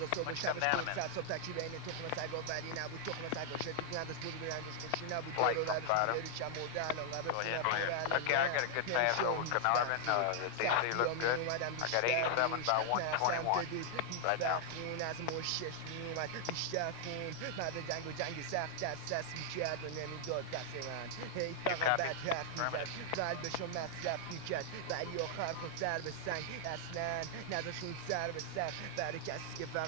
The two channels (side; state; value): both; different; correlation -0.01